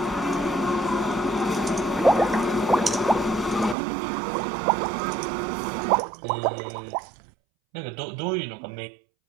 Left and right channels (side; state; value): left; drops out; at 3.8 s